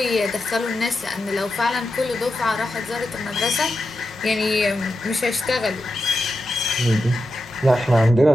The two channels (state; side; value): normal; both; correlation 0.89